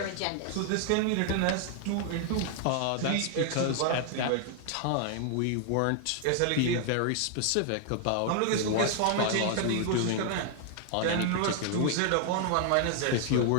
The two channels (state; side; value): different; both; correlation 0.00